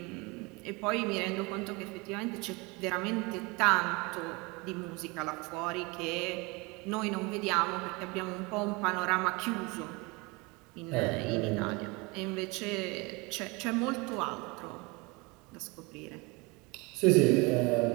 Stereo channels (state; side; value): quieter; left; 26.5 dB